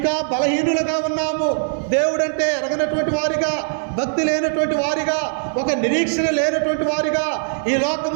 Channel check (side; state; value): left; silent; 65 dB below the other